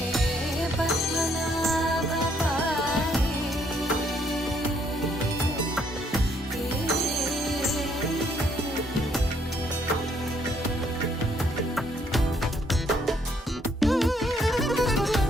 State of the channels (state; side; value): normal; both; correlation 0.69